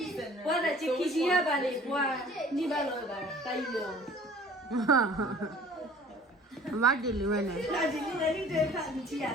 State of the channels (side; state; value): both; normal; correlation 0.49